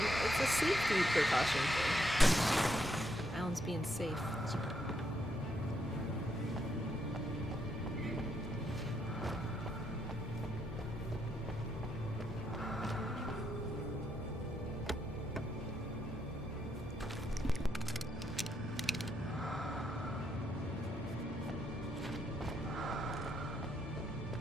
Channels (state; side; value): normal; both; correlation 0.77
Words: it's a safety precaution thing. Alan's being safe.